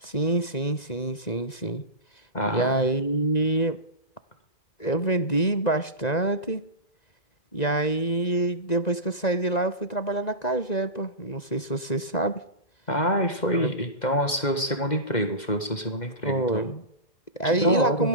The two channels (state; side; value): late; right; 2.1 ms